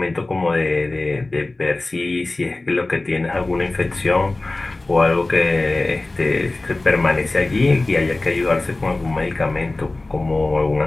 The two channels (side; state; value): right; quieter; 3.0 dB